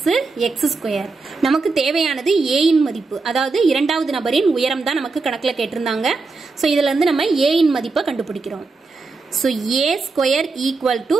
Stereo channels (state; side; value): quieter; left; 4.0 dB